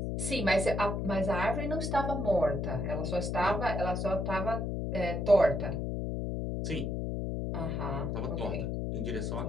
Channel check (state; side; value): noise; left; hum, 1 dB below the sound